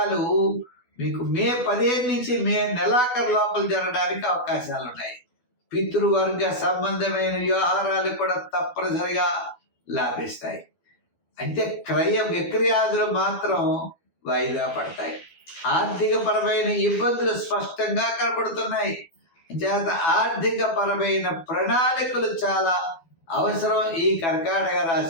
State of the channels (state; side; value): late; right; 12 ms